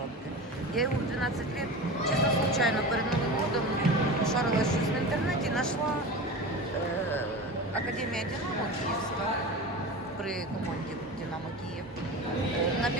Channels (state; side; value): normal; both; correlation 0.30